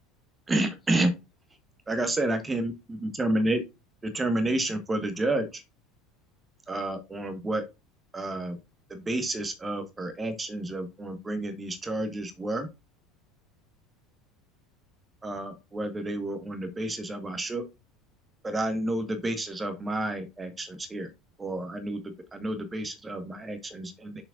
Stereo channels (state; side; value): normal; both; correlation 0.83